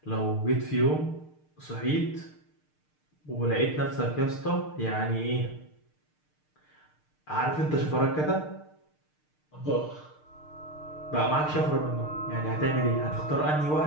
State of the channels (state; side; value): late; right; 6.6 ms